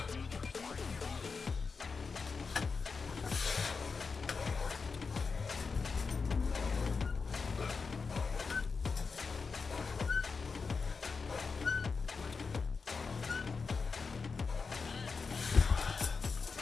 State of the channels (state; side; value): quieter; right; 4.9 dB